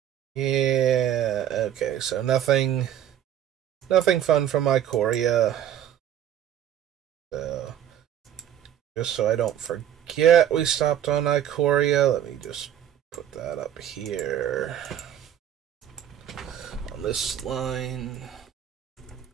Yeah, okay, so nothing fun from Ikoria. So, just so I don't forget, we stopped on Ikoria. Let me just put that up here on this line.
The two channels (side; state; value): left; quieter; 10.5 dB